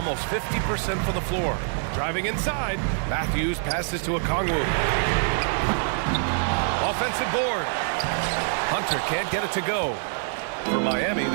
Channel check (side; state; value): left; silent; digital silence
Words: 50% from the floor. Driving inside, Matthews passes to Okongwu. Offensive board. Hunter can't get it to go. For Miami,